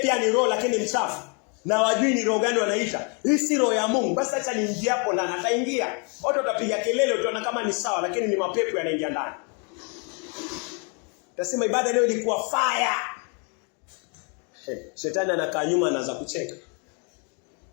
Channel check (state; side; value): quieter; right; 36.3 dB